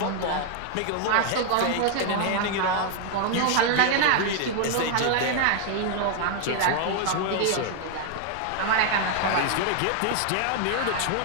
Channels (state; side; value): different; both; correlation 0.00